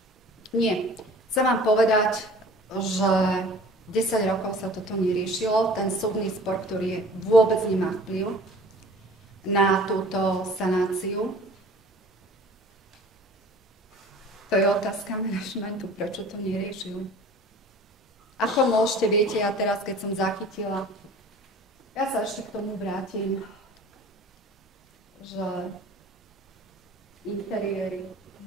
Nie. Chcem vám povedať, že 10 rokov sa toto neriešilo. Ten súdny spor, ktorý vôbec nemá vplyv na túto sanáciu. To je otázka manažmentu, prečo to neriešili. Ako môžete, viete, ja teraz, keď som zachytila, ja sa ešte k tomu vrátim, že interiéry,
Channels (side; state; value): both; normal; correlation 0.46